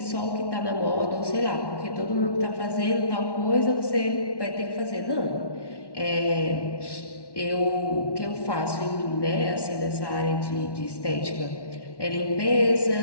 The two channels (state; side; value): late; right; 1.1 ms